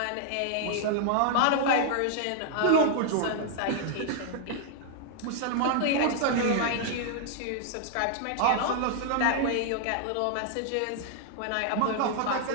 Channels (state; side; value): different; both; correlation 0.00